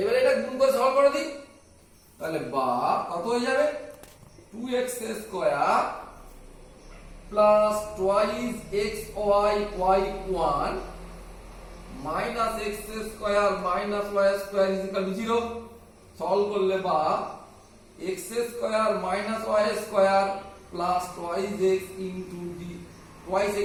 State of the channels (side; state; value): both; identical; correlation 1.00